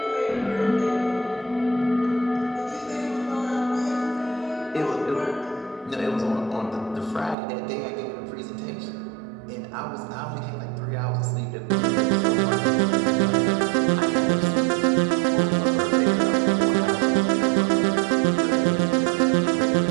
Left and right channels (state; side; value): drops out; left; at 7.4 s